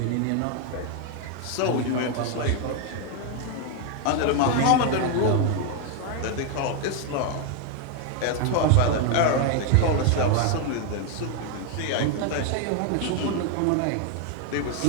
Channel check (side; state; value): both; different; correlation 0.01